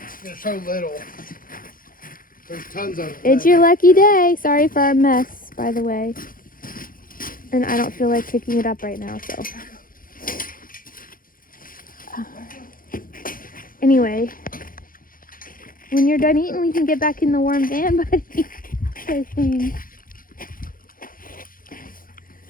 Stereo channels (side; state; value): right; late; 0.41 ms